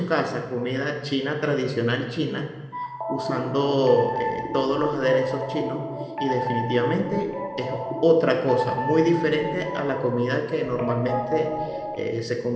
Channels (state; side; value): identical; both; correlation 1.00